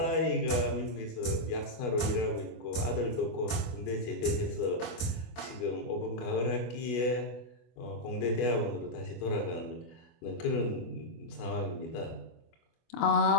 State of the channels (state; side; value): late; right; 24 ms